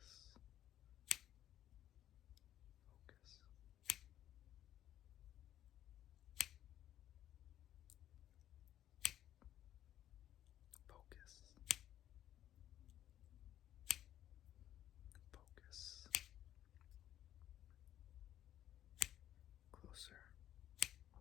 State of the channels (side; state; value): right; quieter; 11.8 dB